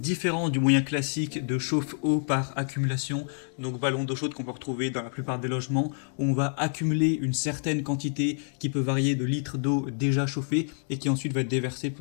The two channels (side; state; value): right; silent; 60 dB below the other